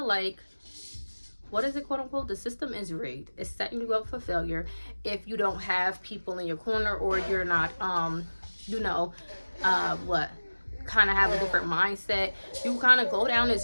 like, what is it, quote unquote, the system is rigged. It's setting you up for failure if you don't have people in your corner, or you're not you know, kind of have a different mindset. You kind of go down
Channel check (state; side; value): inverted; both; correlation -1.00